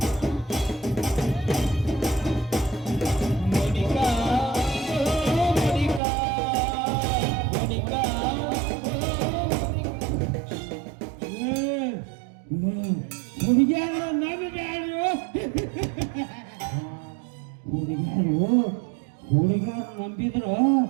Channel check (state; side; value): drops out; left; at 6.0 s